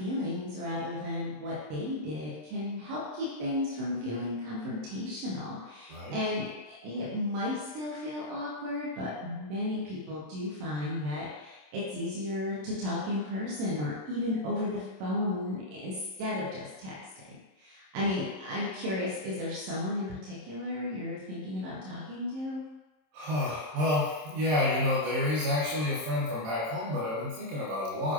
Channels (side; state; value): left; late; 27 ms